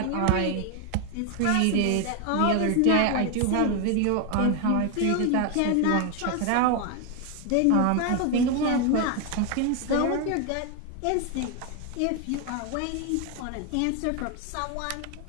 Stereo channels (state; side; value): different; both; correlation 0.01